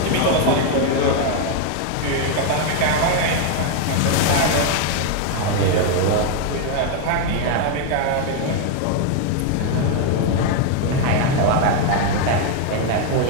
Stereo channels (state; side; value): different; both; correlation 0.00